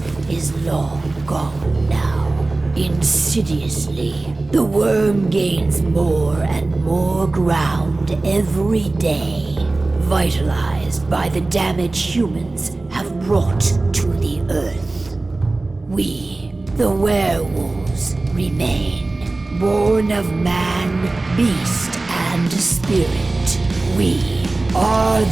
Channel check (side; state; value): left; quieter; 3.2 dB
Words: is long gone now. Insidiously, the Wyrm gains more and more ground every day, vitalized by the damage humans have brought to the Earth. We, the werewolves, remain, born of man, beast, and spirit. We are